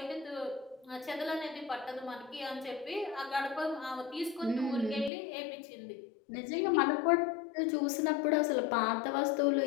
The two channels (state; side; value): drops out; right; at 5.1 s